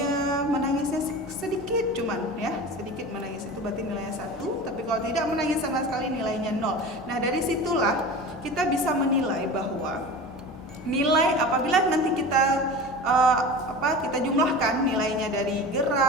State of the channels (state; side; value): normal; both; correlation 0.33